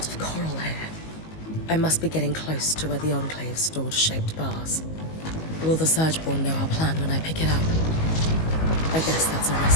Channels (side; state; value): right; late; 19 ms